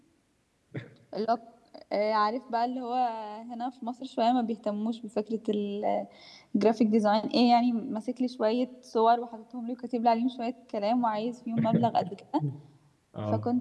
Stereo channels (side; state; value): both; identical; correlation 1.00